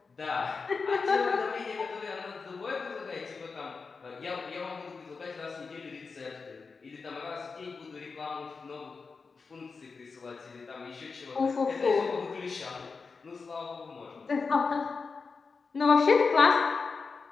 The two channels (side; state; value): right; quieter; 4.7 dB